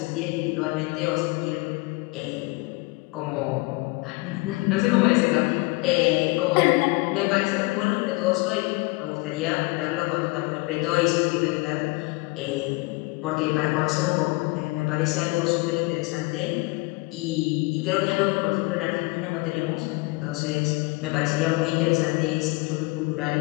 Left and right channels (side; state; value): right; quieter; 25.2 dB